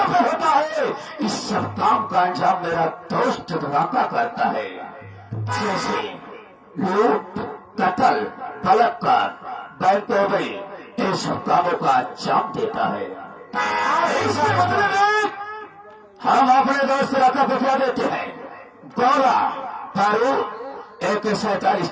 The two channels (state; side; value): identical; both; correlation 1.00